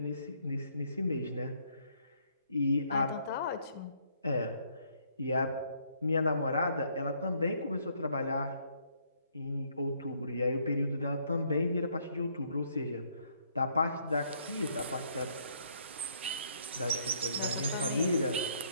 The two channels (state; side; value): inverted; both; correlation -0.68